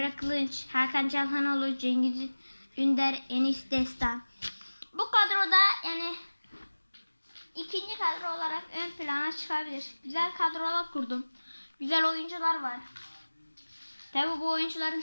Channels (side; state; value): both; inverted; correlation -1.00